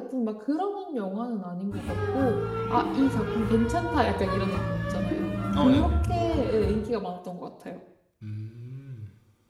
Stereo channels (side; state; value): both; identical; correlation 1.00